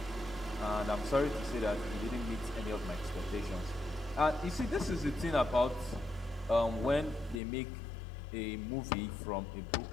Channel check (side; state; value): right; drops out; at 7.4 s